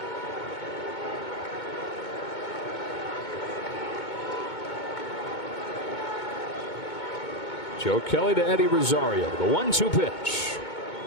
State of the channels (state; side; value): late; right; 2.2 ms